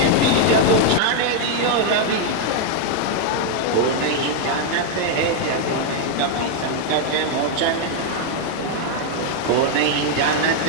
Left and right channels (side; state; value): both; different; correlation 0.00